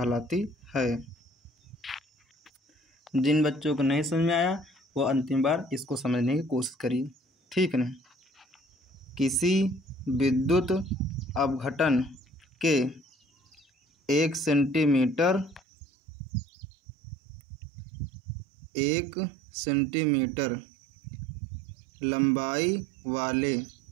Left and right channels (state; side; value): drops out; left; at 15.6 s